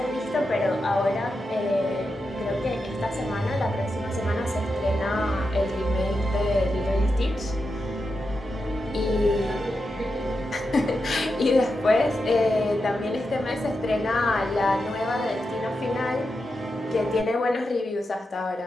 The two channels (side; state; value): both; normal; correlation 0.88